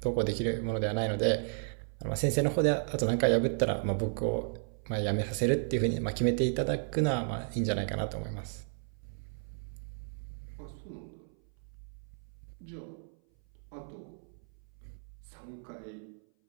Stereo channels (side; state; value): left; silent; 56 dB below the other